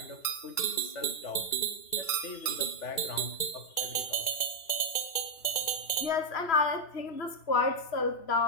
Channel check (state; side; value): late; right; 2.3 ms